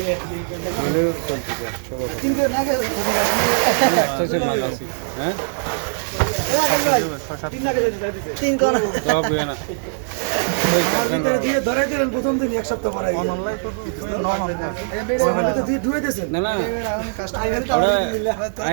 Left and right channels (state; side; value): silent; left; digital silence